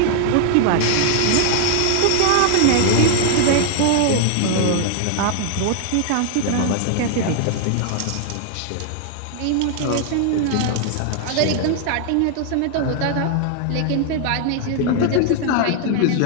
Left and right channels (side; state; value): both; different; correlation 0.00